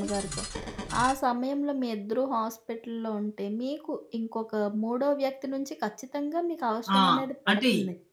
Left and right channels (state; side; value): identical; both; correlation 1.00